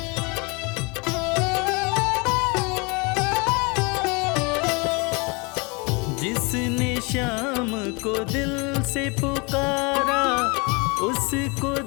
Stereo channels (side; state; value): right; quieter; 29.4 dB